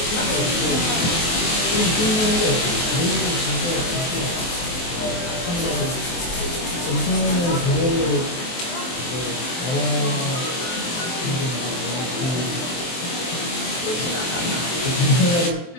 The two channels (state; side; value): late; right; 23 ms